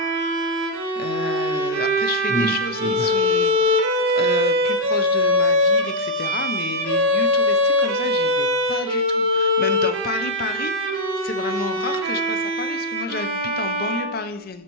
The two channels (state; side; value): normal; both; correlation -0.02